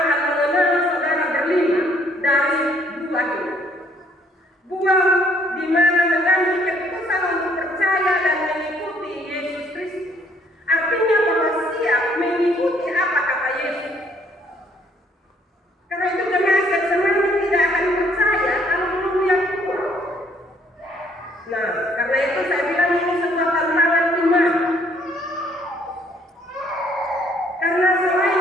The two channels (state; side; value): normal; both; correlation 0.64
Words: mengenal saudara berlima dari buah ini. Buah di mana mengambil keputusan untuk percaya dan mengikuti Yesus Kristus. Artinya bahwa siap mengikuti apa kata Yesus. Karena itu jemaat yang semuanya tidak akan percaya kalau belum lihat buah. Nah, karena itu saya bilang ini sebuah tantangan iman. Karena selain